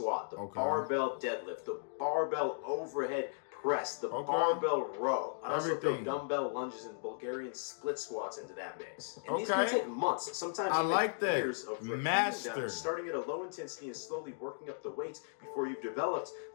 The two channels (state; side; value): silent; right; digital silence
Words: the barbell deadlift, the barbell overhead press, the barbell row. I'd also throw dumbbell lunges and Bulgarian split squats into that mix. And these can take months, sometimes even years of repeating them, starting at a low intensity and slowly working up the weights before you've developed